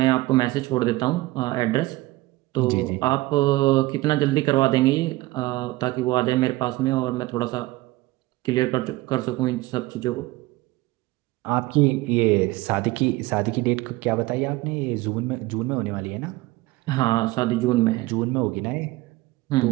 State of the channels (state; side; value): quieter; left; 19.6 dB